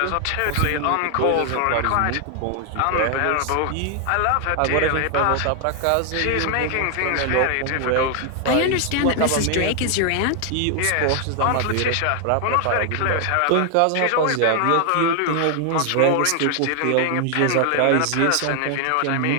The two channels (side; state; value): both; different; correlation 0.00